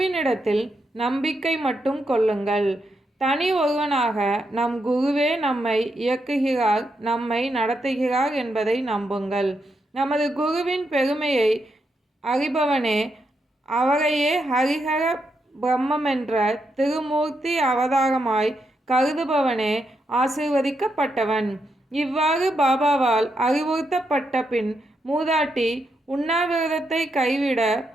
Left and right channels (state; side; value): normal; both; correlation 0.82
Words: நம்பிக்கை மட்டும் கொள்ளுங்கள். தனி ஒருவனாக நம் குருவே நம்மை இயக்குகிறார், நம்மை நடத்துகிறார் என்பதை நம்புங்கள். நமது குருவின் பெருமையை அறிபவனே, அவரையே ஹரிஹர பிரம்மென்ற திருமூர்த்தி அவதாரமாய் கருதுபவனே ஆசீர்வதிக்கப்பட்டவன். இவ்வாறு பாபாவால் அறிவுறுத்தப்பட்ட பின் மூதாட்டி உண்ணாவிரதத்தை கைவிட